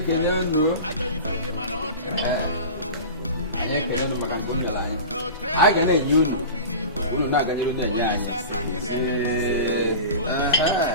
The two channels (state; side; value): inverted; both; correlation -0.32